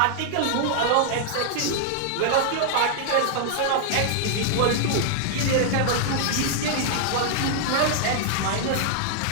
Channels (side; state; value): both; different; correlation -0.01